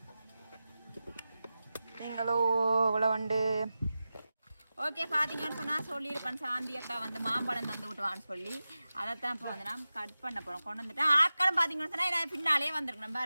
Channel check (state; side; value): inverted; both; correlation -0.94